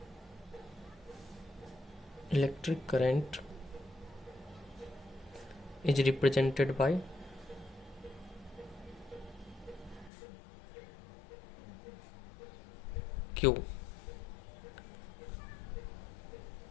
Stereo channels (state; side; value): drops out; right; at 10.1 s